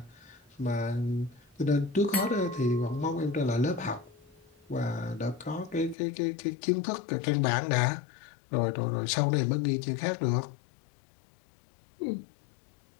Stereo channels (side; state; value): right; drops out; at 6.0 s